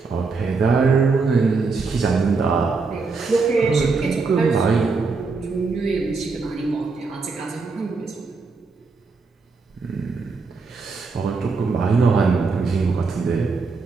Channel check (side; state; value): left; quieter; 4.4 dB